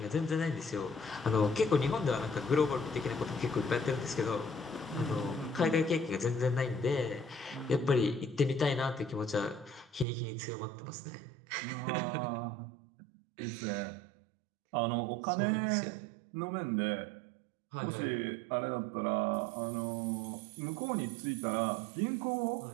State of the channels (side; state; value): left; drops out; at 10.1 s